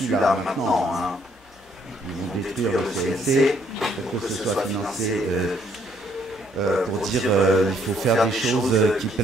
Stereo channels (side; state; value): both; normal; correlation 0.67